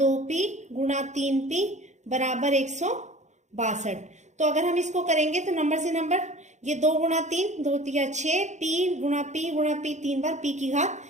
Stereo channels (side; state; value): left; late; 0.34 ms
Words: गुणा 3p बराबर 162। तो अगर हम इसको करेंगे तो नंबर से नंबर, ये 2 गुणा 3, 2 तिया 6, p गुणा p 3 बार p की घात